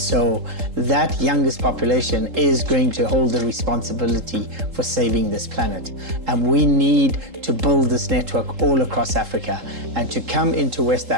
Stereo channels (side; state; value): left; late; 3.8 ms